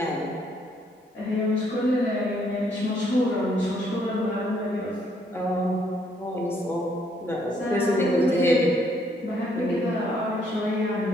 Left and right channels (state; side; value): normal; both; correlation 0.69